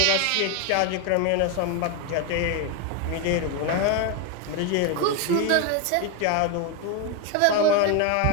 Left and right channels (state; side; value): different; both; correlation 0.02